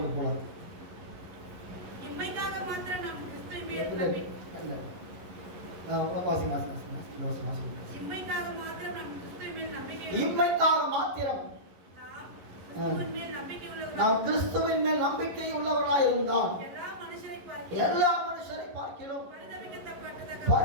போலாம். இம்மைக்காக மாத்திரம் நாம் கிறிஸ்துவை மேல் நம்பிக்கை இம்மைக்காக மாத்திரம் நாம் கிறிஸ்துவை மேல் நம்பிக்கை நாம் கிறிஸ்துவின் மேல் நம்பிக்கை உள்ளவர்களாய் இருந்தால் எல்லா மனுஷரை பார்க்கிலும்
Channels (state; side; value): late; left; 11 ms